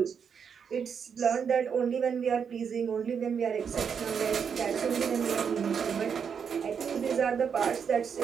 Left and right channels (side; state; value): left; quieter; 6.9 dB